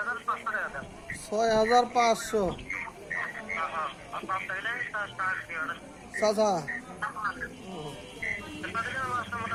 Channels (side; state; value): both; identical; correlation 1.00